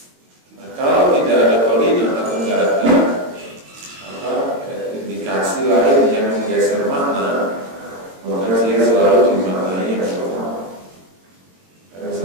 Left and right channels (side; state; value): left; late; 22 ms